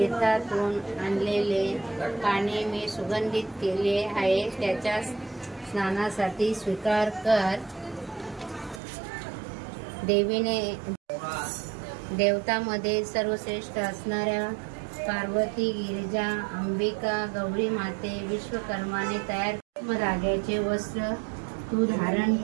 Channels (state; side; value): drops out; left; at 8.8 s